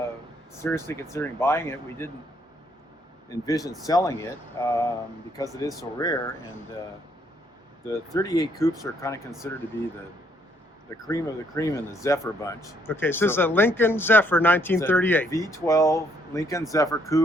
seriously considering buying it. We didn't envision selling it because it is so rare, and the 38 coupes are kind of considered to be the cream of the cream in the Zephyr bunch. Okay, so this is a Lincoln-Zephyr 1938. V12 Lincoln-Zephyr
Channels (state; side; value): normal; both; correlation 0.69